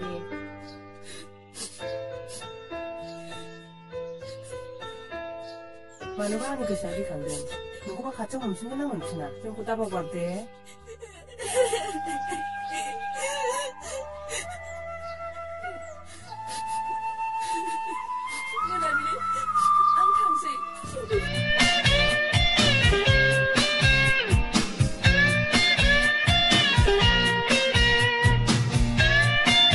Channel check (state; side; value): identical; both; correlation 1.00